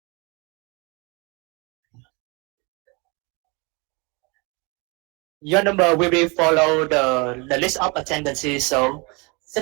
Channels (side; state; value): left; quieter; 29.2 dB